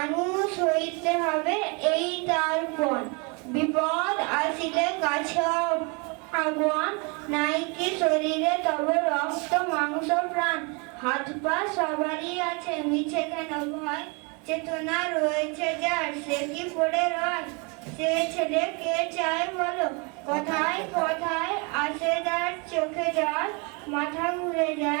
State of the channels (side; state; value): left; quieter; 32.0 dB